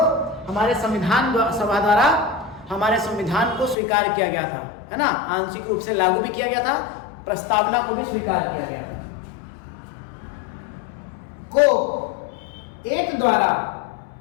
हमारे संविधान सभा द्वारा हमारे संविधान को स्वीकार किया गया था, है ना। आंशिक रूप से लागू भी किया गया था, प्रस्तावना को भी स्वीकार किया गया था। को एक द्वारा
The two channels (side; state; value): right; drops out; at 3.8 s